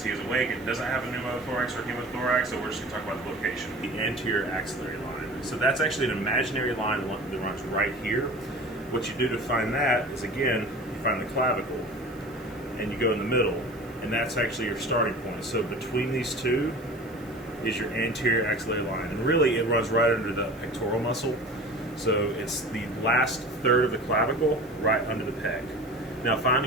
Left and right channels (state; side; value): noise; right; hiss, 27 dB below the sound